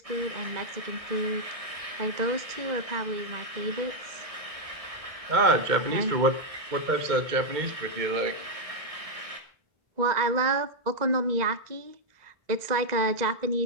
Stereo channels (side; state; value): left; late; 2.0 ms